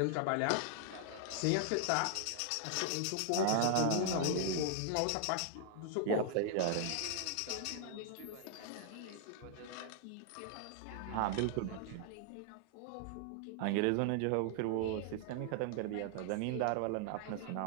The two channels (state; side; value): different; both; correlation 0.00